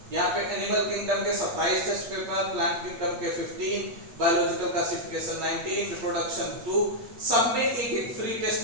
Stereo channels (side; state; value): left; late; 8.5 ms